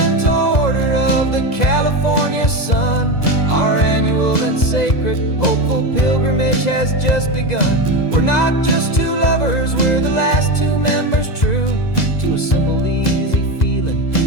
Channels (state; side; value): late; right; 2.0 ms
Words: order of the California sun. Our annual and sacred hopeful pilgrimage has just begun. We're not just two lovers, we're the last two members true to a simple, easy feeling